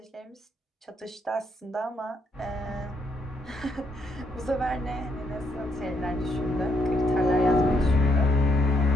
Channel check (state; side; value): normal; both; correlation 0.75